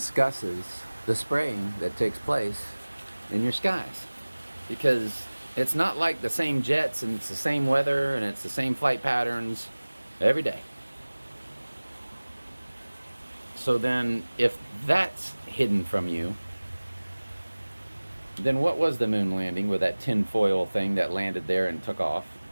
the spraying that takes place in your skies? Because it's not like the same jets and it's the same weather and it's the same flight patterns every day. So then if that's hidden from you, then what was the moon landing with that tinfoil thing that landed there and took off?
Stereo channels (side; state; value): both; inverted; correlation -1.00